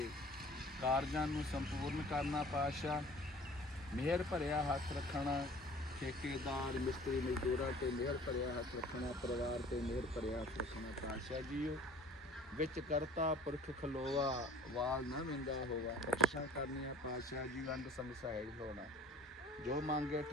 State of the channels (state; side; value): normal; both; correlation 0.49